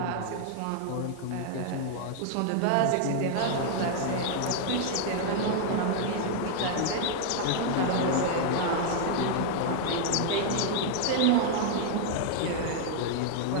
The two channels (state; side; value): different; both; correlation -0.01